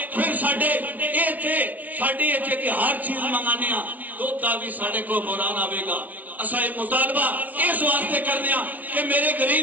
फिर साडे इत्थे कि हर चीज मंगाने दुध का भी साडे को बुरान आवेगा। असा ये मुतालबा इस वास्ते करने कि मेरे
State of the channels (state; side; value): late; left; 0.075 ms